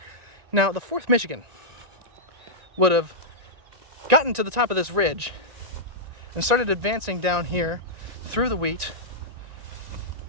Now, the 4th Michigan would have gotten to the top of this ridge and started advancing down here through the wheat,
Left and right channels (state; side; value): late; left; 1.9 ms